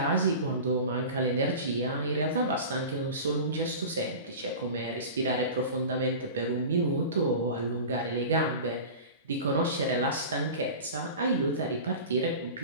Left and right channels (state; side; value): inverted; both; correlation -0.34